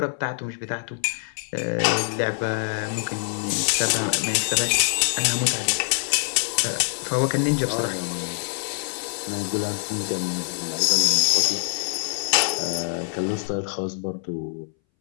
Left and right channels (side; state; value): right; silent; 61 dB below the other